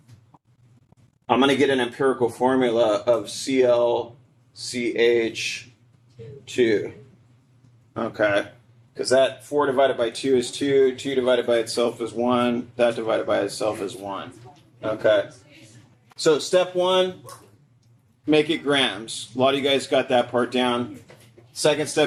I'm going to get an empirical formula of ClCH2. Okay, because that 4 divided by 2 is 2, 2 divided by itself is 1, that divided by itself is 1. Okay, so step 1, make it grams. A lot of you guys got that part down. Second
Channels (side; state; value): both; identical; correlation 1.00